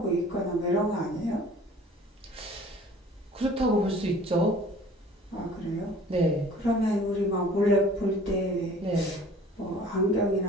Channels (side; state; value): both; normal; correlation 0.49